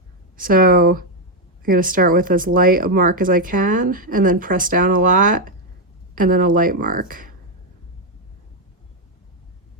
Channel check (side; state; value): both; normal; correlation 0.02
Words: So I'm going to start with as light a mark as I can, and then press down a lot, and then a light mark.